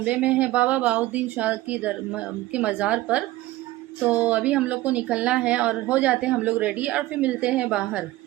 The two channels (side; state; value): left; quieter; 17.1 dB